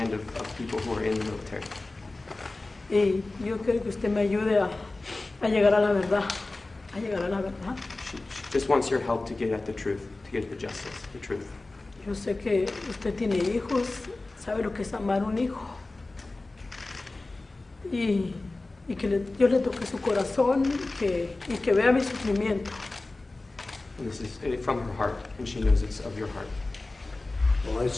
of people who are in the military. Y yo quiero que usted me ayude a llegar a la verdad, a llegar a la verdad. She just wants your help to get at the truth, to get at the justice, the truth. Yo sé que usted tiene hijos, sabe lo que es amar un hijo. Y que Dios le toque su corazón y que vea mi sufrimiento. And this is from her heart, and she knows it's of your heart. Well, I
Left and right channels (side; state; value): right; quieter; 3.1 dB